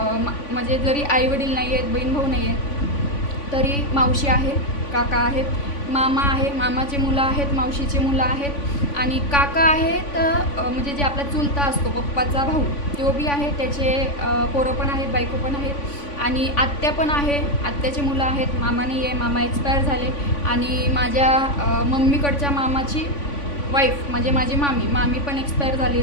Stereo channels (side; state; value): right; late; 3.5 ms